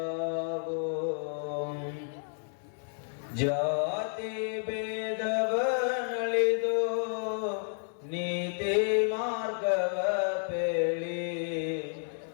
ಜಾತಿ ಭೇದವನಳಿದು ನೀತಿ ಮಾರ್ಗವ ಪೇಳಿ,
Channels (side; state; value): right; silent; 56 dB below the other